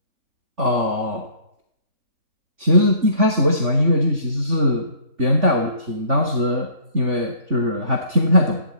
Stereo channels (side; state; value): left; late; 3.5 ms